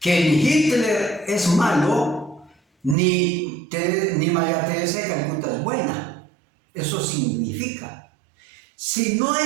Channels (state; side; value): drops out; left; at 3.0 s